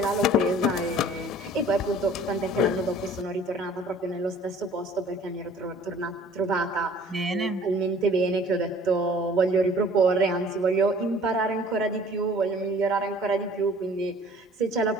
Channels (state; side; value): normal; both; correlation 0.51